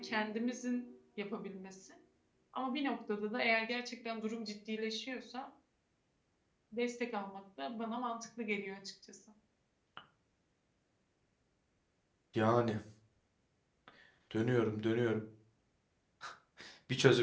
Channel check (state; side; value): identical; both; correlation 1.00